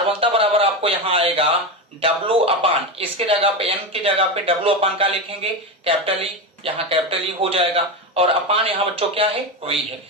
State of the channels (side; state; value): both; normal; correlation 0.16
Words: बराबर आपको यहाँ आएगा W अपान, इसके जगह पे n की जगह पे W अपान का लिखेंगे कैपिटल ई, यहाँ कैपिटल ई हो जाएगा, और अपान यहाँ बच्चों क्या है? V है।